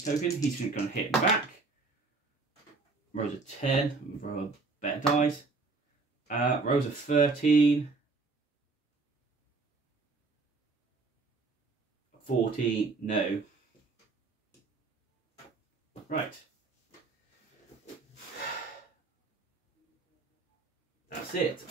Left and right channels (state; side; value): quieter; left; 3.9 dB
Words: token. He's going to hit him back. Rolls a 10, roll a better dice. Rolls a 13. 14, no. Right. That's it.